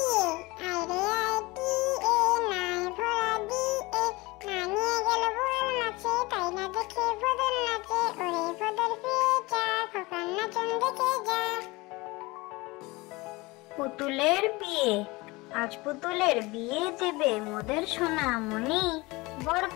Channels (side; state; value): right; quieter; 22.9 dB